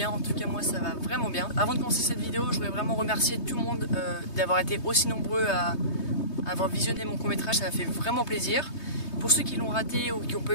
en tout cas moi ça va vraiment bien. Avant de commencer cette vidéo, je voudrais vraiment remercier tout le monde d'avoir été aussi nombreux à avoir visionné mon court-métrage, ça m'a fait vraiment plaisir. Pour ceux qui l'ont raté ou qui n'ont pas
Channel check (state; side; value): late; right; 3.2 ms